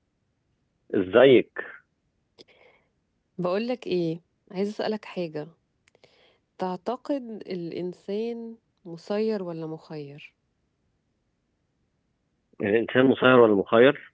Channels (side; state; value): both; identical; correlation 1.00